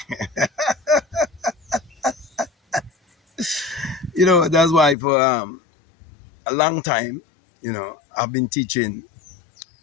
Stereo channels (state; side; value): drops out; right; at 5.0 s